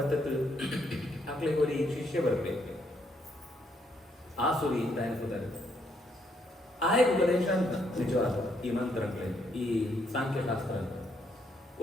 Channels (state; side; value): normal; both; correlation 0.73